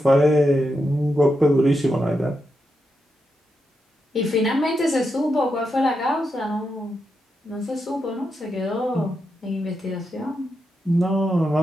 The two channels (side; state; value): both; normal; correlation 0.85